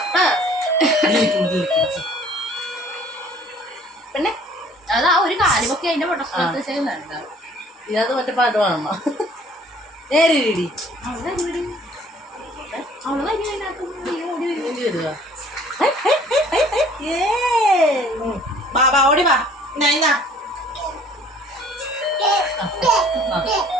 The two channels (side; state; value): both; normal; correlation 0.54